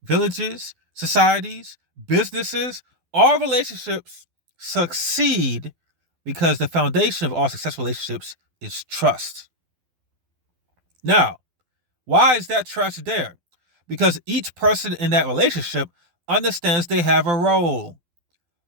villages, societies, businesses, all relationships succeed because the foundation of all successful relationships is trust. Now, why is that trust there? Because each person in that relationship understands they have a role.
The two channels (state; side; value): late; left; 12 ms